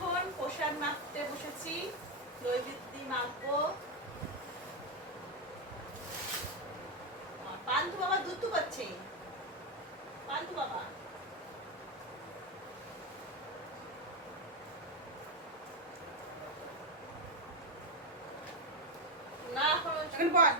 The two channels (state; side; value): normal; both; correlation 0.07